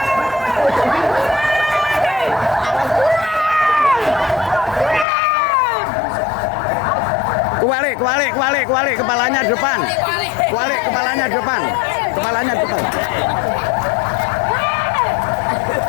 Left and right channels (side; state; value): right; drops out; at 5.1 s